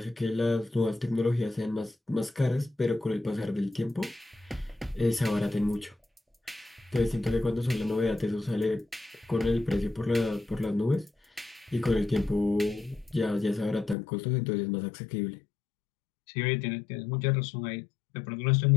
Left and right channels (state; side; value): drops out; right; at 14.0 s